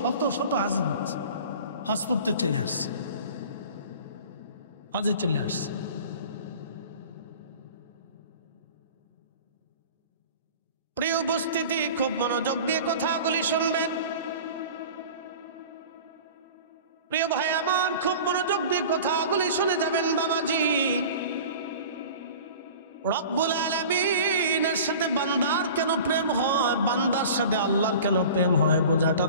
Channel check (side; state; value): both; inverted; correlation -0.40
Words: শত হাজির হচ্ছে, হজ করতে চলে আসছে, হজে চলে আসছে। প্রিয় উপস্থিতি, খুব মনোযোগ দিয়ে কথাগুলি শুনবেন। প্রিয় ভাই আমার, খুব মনোযোগ দিয়ে কথাগুলি শুনে যাবেন বাবাজি। রব্বুল আলামিনের সাথে বান্দার কেন প্রেম হয়, বান্দার সাথে আল্লাহর কেন প্রেম হয় বোঝাটা